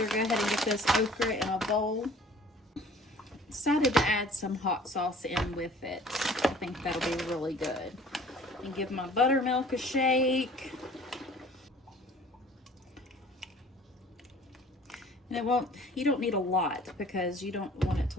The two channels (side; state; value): both; normal; correlation 0.51